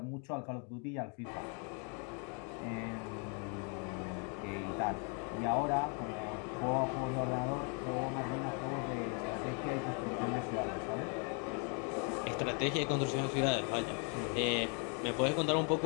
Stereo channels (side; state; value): right; quieter; 38.9 dB